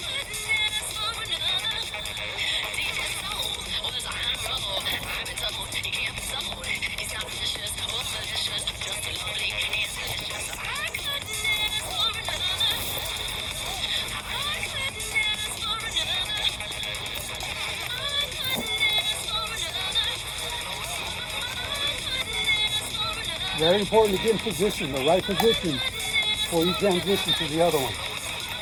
Very important to get in position, the right position, before you transition to the other one.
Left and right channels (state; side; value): identical; both; correlation 1.00